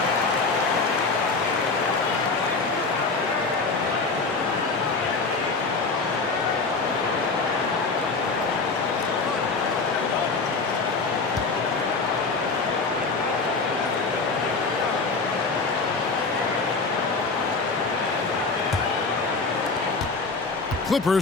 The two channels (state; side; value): quieter; right; 4.1 dB